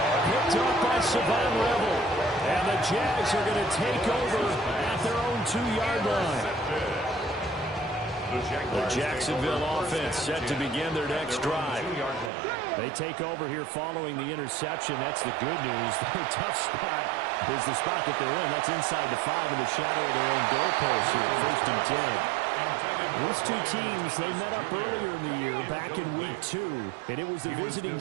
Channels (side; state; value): left; drops out; at 12.3 s